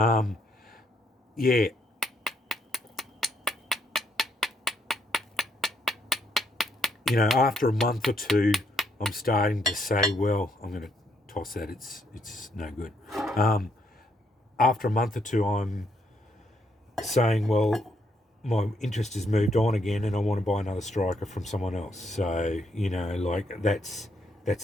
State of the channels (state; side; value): normal; both; correlation 0.74